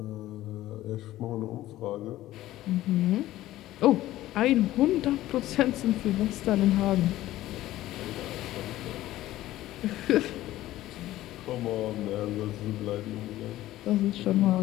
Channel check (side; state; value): right; quieter; 15.2 dB